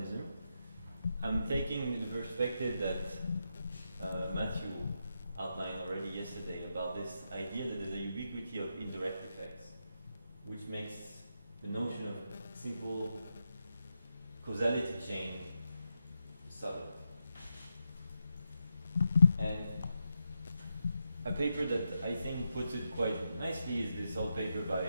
I'm taking the perspective that Matthew outlined already yesterday about this idea that there's a ubiquity of indirect effects, which makes the notion of simple causality chain subtle. And a paper that I think puts it quite nicely is this old paper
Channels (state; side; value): inverted; both; correlation -0.85